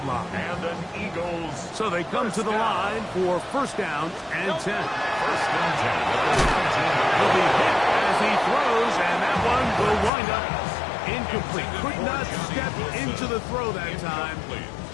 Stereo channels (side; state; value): right; drops out; at 10.1 s